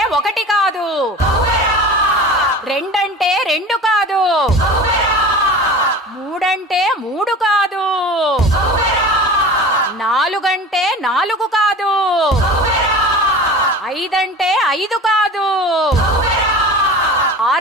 ఒకటి కాదు, రెండంటే రెండు కాదు, మూడంటే మూడు కాదు, నాలుగంటే నాలుగు కాదు, ఐదంటే ఐదు కాదు,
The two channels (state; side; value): normal; both; correlation 0.36